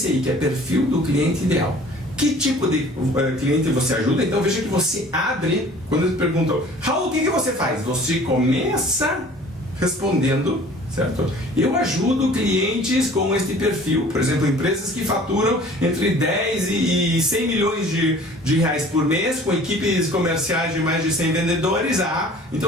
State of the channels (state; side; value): normal; both; correlation 0.49